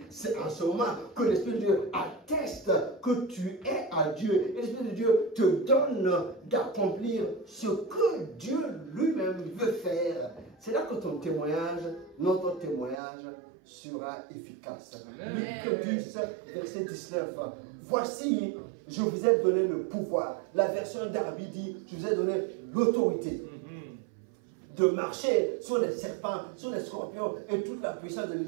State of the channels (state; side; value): drops out; left; at 13.0 s